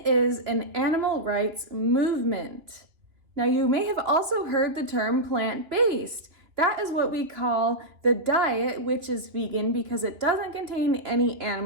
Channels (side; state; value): left; late; 2.9 ms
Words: an animal rights movement. Now you may have also heard the term plant-based. That is what we call the diet, which is vegan because it doesn't contain any